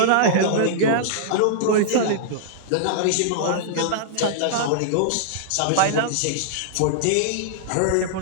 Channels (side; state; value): both; different; correlation -0.01